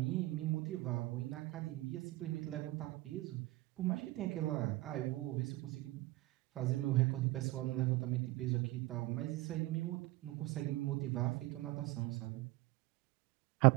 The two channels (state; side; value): quieter; left; 19.1 dB